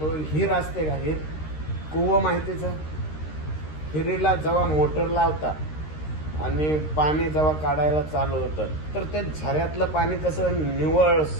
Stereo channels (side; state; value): right; late; 13 ms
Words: हिर असते का? हिर कुवं माहितीचं? हिरीला जेव्हा मोटर लावतात आणि पाणी जेव्हा काढायला चालू होतं तर ते झऱ्यातलं पाणी कसं निव्वळ